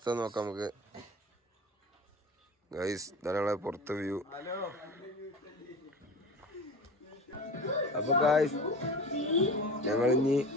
നോക്കാം നമുക്ക്. ഗൈസ് ധാരാളം പുറത്തെ വ്യൂ. അപ്പൊ ഗൈസ് ഞങ്ങൾ ഇനി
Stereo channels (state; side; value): normal; both; correlation 0.34